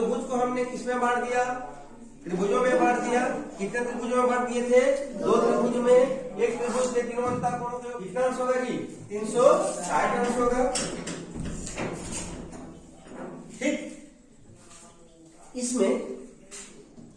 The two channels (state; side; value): identical; both; correlation 1.00